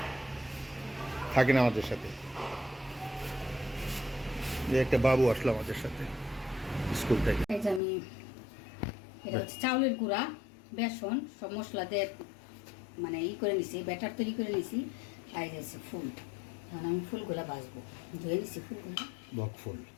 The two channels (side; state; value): right; drops out; at 7.8 s